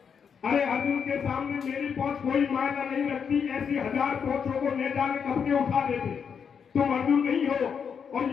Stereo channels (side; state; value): right; quieter; 6.8 dB